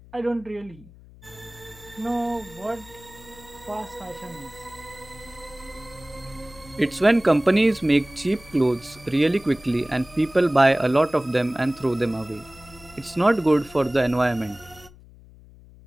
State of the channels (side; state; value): left; noise; hum, 22 dB below the sound